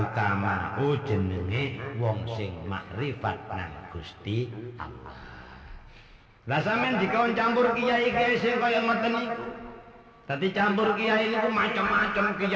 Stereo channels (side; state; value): both; identical; correlation 1.00